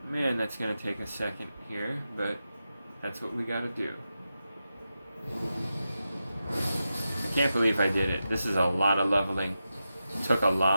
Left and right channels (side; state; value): both; inverted; correlation -0.90